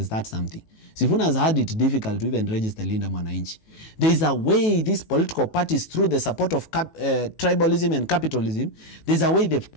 start something. Sifuna has had it difficult to even register Linda Mwananchi. There is a way these political parties, through the support of tribalism and capitalism, there's a way they've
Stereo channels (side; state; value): right; late; 18 ms